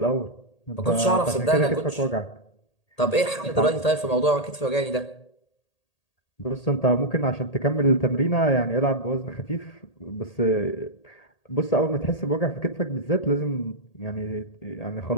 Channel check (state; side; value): late; right; 1.8 ms